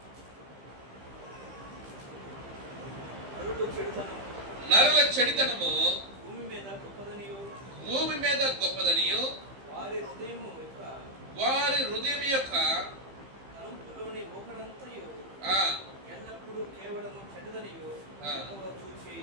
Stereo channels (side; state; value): left; late; 15 ms